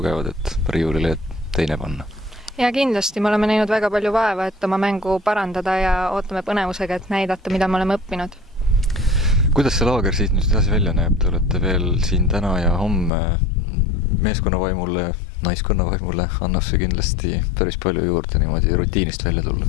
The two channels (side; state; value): right; drops out; at 13.1 s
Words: et riiulile teine panna. Ja kindlasti me oleme näinud väga palju vaeva, et oma mängu parandada ja ootame põnevusega, et näidata, mida me oleme õppinud. Kuidas see laager siit nüüd edasi välja näeb? Te olete veel siin täna ja homme meeskonna vaimule, naiskonna vaimule annab see kindlasti päris palju juurde niimoodi rutiinist välja tulla.